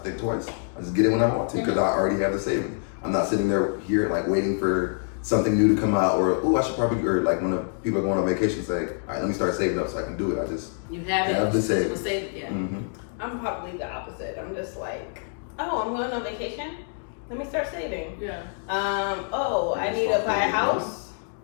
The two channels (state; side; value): silent; right; 61 dB below the other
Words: twice. I just get it when I want to because I already have the savings. I'm not sitting there here like waiting for something new to come out or I should probably, or like when people are going on vacation say, all right, let me start saving up so I can do it. I just You have it. have the savings. It was saved, yeah. Mm-hmm. I'm probably the opposite. I'm just like, oh, I'm going on vacation. Let me start saving. Yeah. Oh, I need to buy a house.